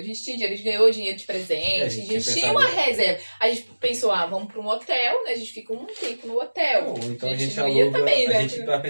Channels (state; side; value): inverted; both; correlation -1.00